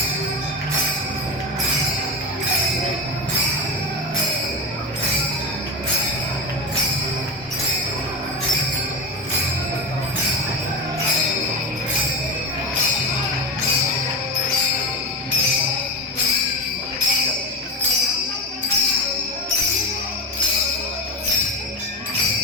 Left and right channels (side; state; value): both; normal; correlation 0.20